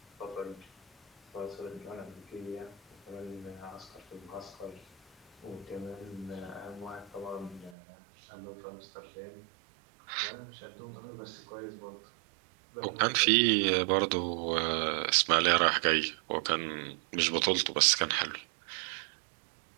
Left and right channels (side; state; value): left; drops out; at 7.8 s